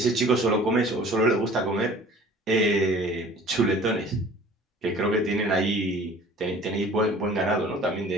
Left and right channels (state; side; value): normal; both; correlation 0.48